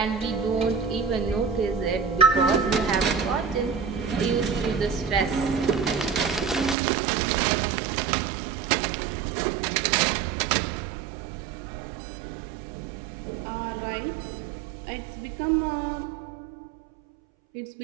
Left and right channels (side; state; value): left; drops out; at 6.8 s